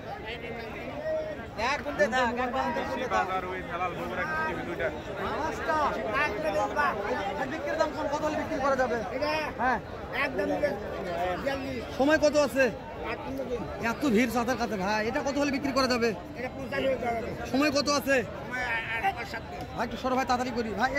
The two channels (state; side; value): identical; both; correlation 1.00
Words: এক ঘন্টা দেখ, এক ঘন্টা বাজার ওই হেলাল বগুড়া টিভি দুইটা। বিক্রির দাম কত হলে বিক্রি করা যাবে? হ্যাঁ, সময় কত আছে? এত ভিড় সাঁতার কাছে ভাই, এটা কত হলে বিক্রি করা যাবে? সময় কত আছে ভাই? একটু সরো ভাই, তাড়াতাড়ি করি ভাই।